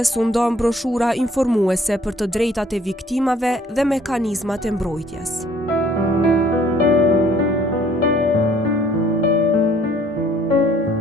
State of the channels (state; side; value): normal; both; correlation 0.59